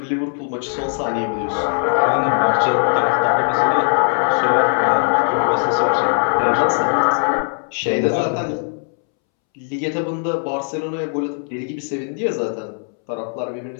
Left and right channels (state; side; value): silent; right; 66 dB below the other